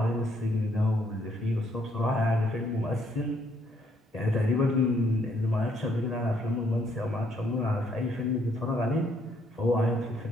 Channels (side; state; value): both; normal; correlation 0.70